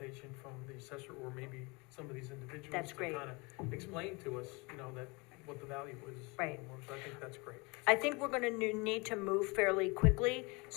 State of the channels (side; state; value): right; quieter; 27.4 dB